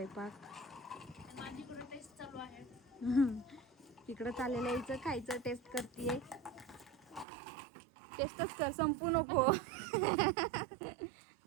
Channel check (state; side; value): drops out; left; at 7.2 s